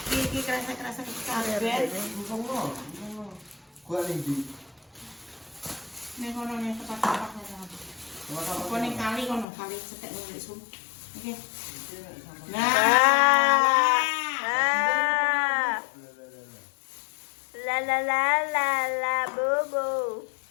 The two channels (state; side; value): drops out; right; at 9.5 s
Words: Iki kerasa-kerasa kabeh. Gua ning di. Ning kono ning tempat-tempat kono. Apa ning kali kono, kali cetek ning sum. Oke. Ah. La la la la la bobo.